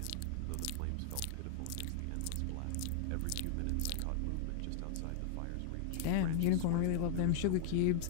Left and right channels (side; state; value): both; different; correlation 0.00